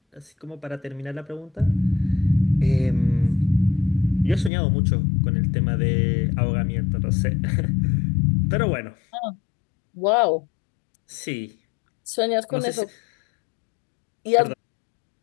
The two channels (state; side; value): drops out; right; at 4.5 s